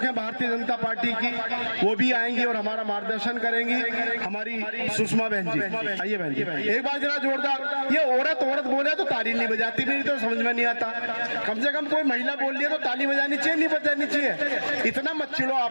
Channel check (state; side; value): inverted; both; correlation -1.00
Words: है भारतीय जनता पार्टी की, वो भी आएंगी और हमारा मार्गदर्शन करेंगी। हमारी सुषमा बहन जी, आइए बहन जी, एक बार जरा जोरदार। ये औरत बोले तो ताली नहीं बजाती, मेरी तो समझ में नहीं आता। कम से कम कोई महिला बोल रही है तो ताली बजानी चाहिए, नहीं बजानी चाहिए? इतना मत चिढ़ो